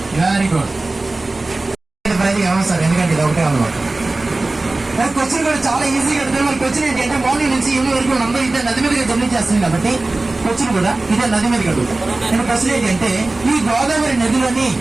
Very good. సార్ ఎందుకంటే ఇది ఒకటే అన్నమాట. క్వశ్చన్ కూడా చాలా ఈజీగా అడుగుతారు. మన క్వశ్చన్ ఏంటంటే మార్నింగ్ నుంచి ఈవినింగ్ వరకు అందరూ ఇదే నది మీదగా జర్నీ చేస్తుంది కాబట్టి క్వశ్చన్ కూడా ఇదే నది మీదకి అడుగుతాం. నేను క్వశ్చన్ ఏంటంటే ఈ గోదావరి నదిలోని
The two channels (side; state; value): left; quieter; 3.1 dB